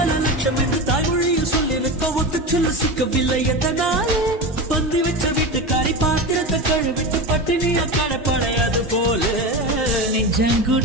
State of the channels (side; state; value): both; normal; correlation 0.23